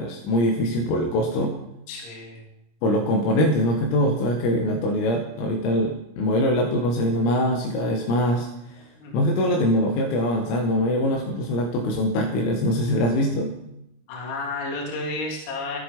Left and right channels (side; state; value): right; late; 25 ms